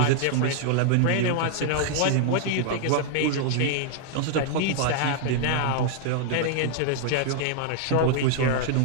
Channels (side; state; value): both; different; correlation 0.00